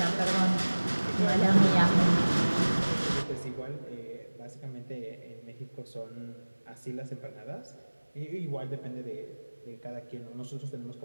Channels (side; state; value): both; inverted; correlation -1.00